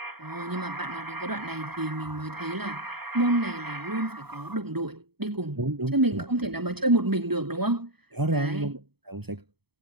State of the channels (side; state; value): left; late; 0.97 ms